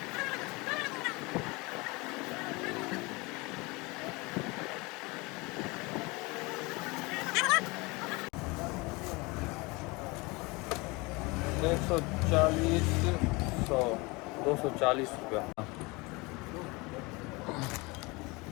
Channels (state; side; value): quieter; right; 25.3 dB